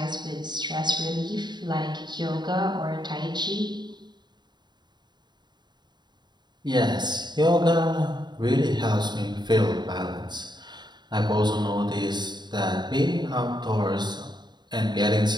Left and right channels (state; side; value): late; left; 0.21 ms